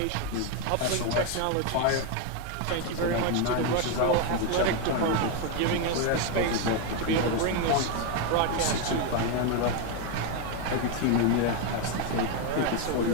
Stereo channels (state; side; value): different; both; correlation 0.01